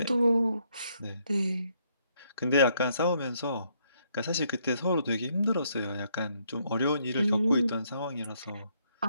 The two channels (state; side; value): inverted; both; correlation -0.72